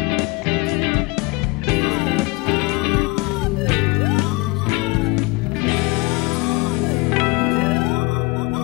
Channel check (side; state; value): right; quieter; 25.0 dB